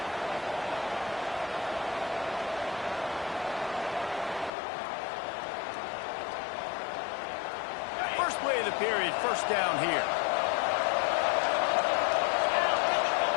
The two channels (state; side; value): drops out; right; at 4.5 s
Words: First play of the period, first down here.